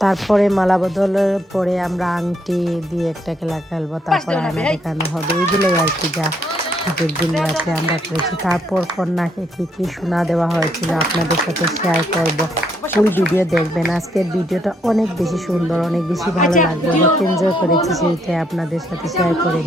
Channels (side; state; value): both; normal; correlation 0.72